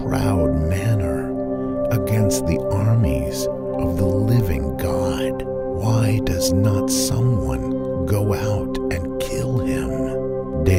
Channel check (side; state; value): both; identical; correlation 1.00